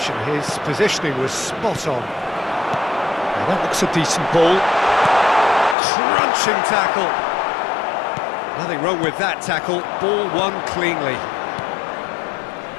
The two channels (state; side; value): drops out; right; at 5.8 s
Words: his positioning was spot on. Now that looks a decent ball. Crunching tackle. Nothing wrong with that tackle, ball won cleanly.